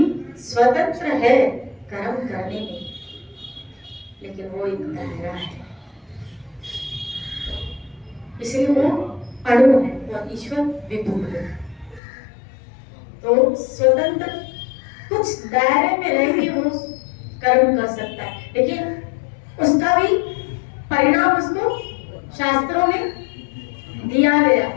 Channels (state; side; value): drops out; right; at 12.0 s